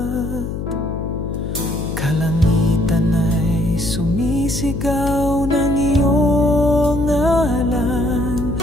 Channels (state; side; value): noise; left; hum, 5 dB below the sound